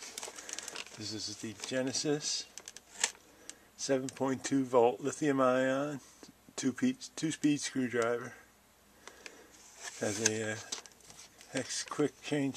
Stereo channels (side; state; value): both; identical; correlation 1.00